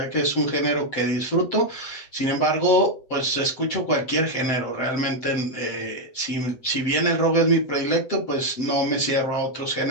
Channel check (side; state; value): right; late; 7.7 ms